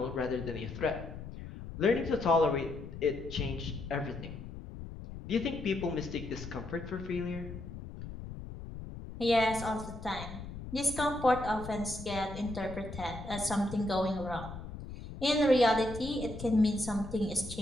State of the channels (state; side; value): noise; left; rumble, 11 dB below the sound